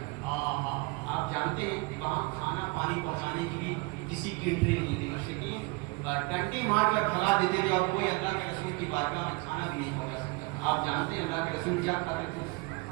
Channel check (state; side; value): quieter; left; 26.4 dB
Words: رہا. آپ جانتے ہیں کہ وہاں کھانا پانی پہنچانے کی بھی کسی کی انٹری نہیں تھی. مشرکین ٹنٹی مار کر بھگا دیتے تھے اور کوئی اللہ کے رسول کی بارگاہ میں کھانا بھی نہیں پہنچا سکتا. آپ جانتے ہیں اللہ کے رسول کیا کھاتے تھے؟